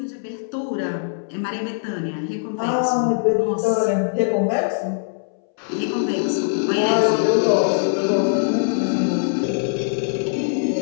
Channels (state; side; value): silent; right; 63 dB below the other